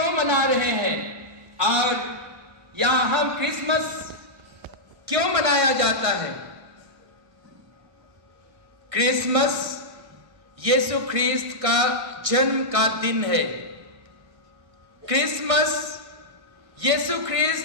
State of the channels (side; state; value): left; late; 1.6 ms